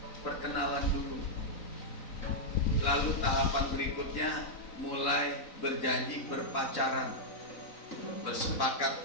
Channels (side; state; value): right; late; 3.9 ms